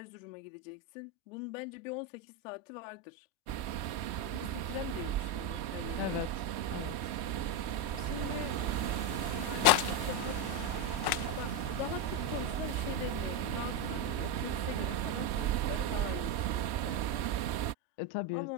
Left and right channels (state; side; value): late; right; 1.1 ms